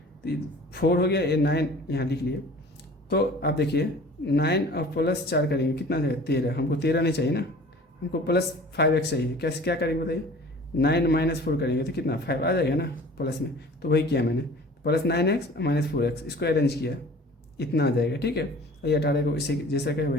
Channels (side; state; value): both; normal; correlation 0.45